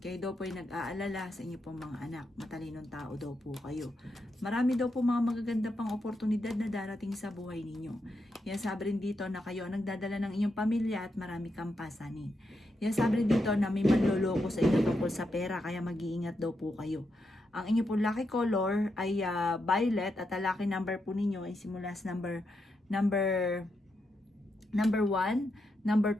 daw po ay nag-aalala sa inyo pong mga anak. Matalinong tao daw po kayo. Marami daw po mga magaganda pang oportunidad na darating sa buhay ninyo. Kaya sabi rin dito na kayo ang nagdadala ng inyong pamilya at marami kang pasanin. Kaya sabi rin dito na may manloloko sa inyo tungkol sa pera kaya mag-iingat daw po kayo. Ang inyo pong lucky color ay violet at ang lucky number po ninyo ay simula sa number 1, number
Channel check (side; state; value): both; normal; correlation 0.83